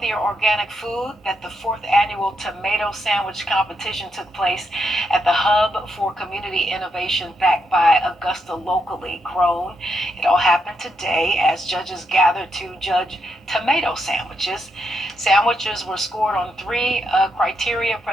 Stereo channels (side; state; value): both; normal; correlation 0.81